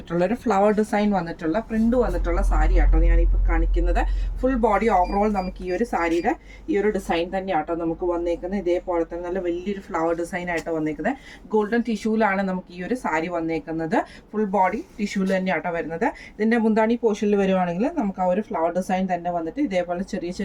ഒരു ഫ്ലവർ ഡിസൈൻ വന്നിട്ടുള്ള പ്രിന്റ് വന്നിട്ടുള്ള സാരി ആട്ടോ ഞാനിപ്പോൾ കാണിക്കുന്നത്. ഫുൾ ബോഡി ഓവറോൾ നമുക്ക് ഈ ഒരു സാരിയുടെ ഈ ഒരു ഡിസൈൻ തന്നെ ആട്ടോ നമുക്ക് വന്നേക്കുന്നത്. ഇതേപോലെ തന്നെ നല്ല വലിയൊരു ഫ്ലവർ ഡിസൈൻ ആയിട്ട് വന്നേക്കുന്നത്. ഗോൾഡൻ ടിഷ്യൂലാണ് നമുക്ക് ഈ ഒരു സാരി വന്നേക്കുന്നത്. ഫുൾ ബോഡി ടിഷ്യൂല് തന്നെ ആട്ടോ വരുന്നത്. ഇതിൻ്റെ മുന്താണി പോർഷനിൽ വരുവാണെങ്കിൽ നമുക്ക് ആ ഒരു ഫ്ലവർ ഡിസൈൻ തന്നെ വന്നിട്ട് ഇതേപോലെ ചെറിയ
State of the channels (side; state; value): both; identical; correlation 1.00